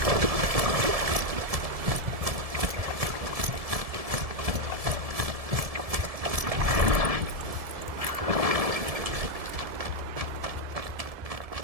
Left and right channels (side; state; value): left; late; 1.7 ms